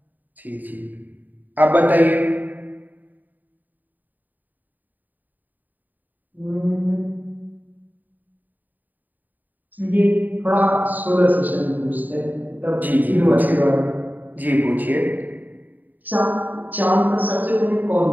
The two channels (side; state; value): left; late; 0.086 ms